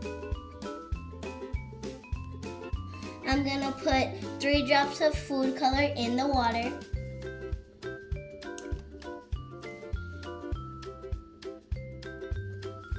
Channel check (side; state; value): both; identical; correlation 1.00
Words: I'm gonna put 3 drops of food color in the water.